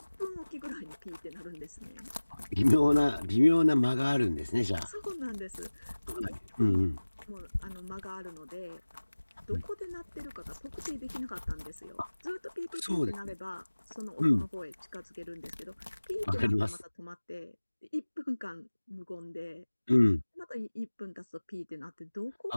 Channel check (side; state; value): both; inverted; correlation -1.00